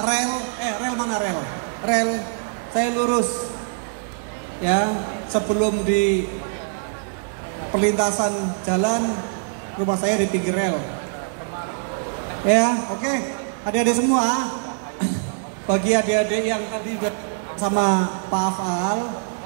rel mana rel? Rel saya lurus. Ya, sebelum di perlintasan jalan, rumah saya di pinggir rel. Ya, oke. Adik-adik semua, bagi adik-adik yang tadi sama Pak Afal,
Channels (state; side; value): silent; left; digital silence